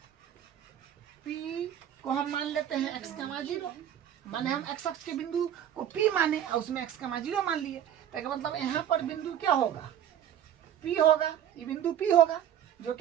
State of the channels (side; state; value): left; quieter; 10.2 dB